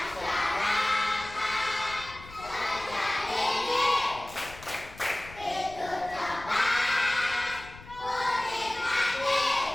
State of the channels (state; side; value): noise; left; rumble, 18 dB below the sound